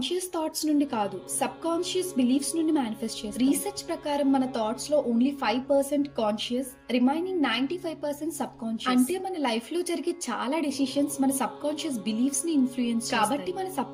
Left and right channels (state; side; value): identical; both; correlation 1.00